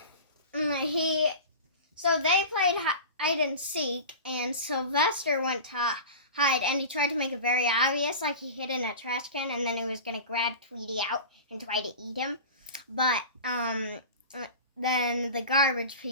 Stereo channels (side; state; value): both; inverted; correlation -0.32